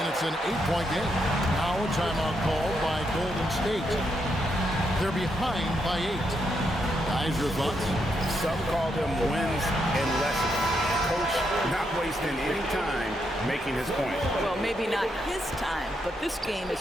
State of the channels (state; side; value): normal; both; correlation 0.80